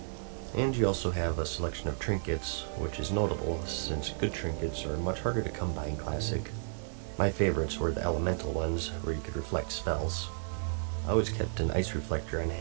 And you also have a selection of trinkets, which is notable since good trinkets are much harder to come by in Classic. My favorites were the elemental ones, where you could reflect spells. I always kept an ice reflector on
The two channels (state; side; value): silent; left; digital silence